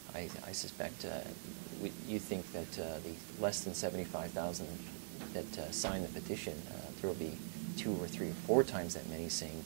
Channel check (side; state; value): left; silent; digital silence